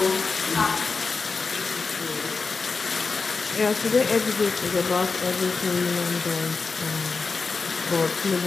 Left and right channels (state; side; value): quieter; right; 4.5 dB